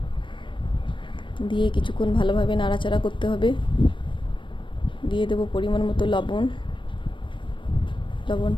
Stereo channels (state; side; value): late; right; 0.24 ms